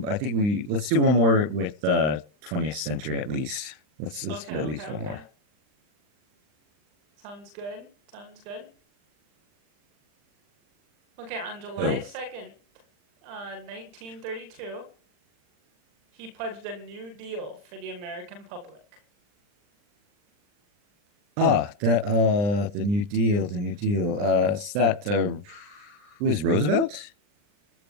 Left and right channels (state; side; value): late; left; 40 ms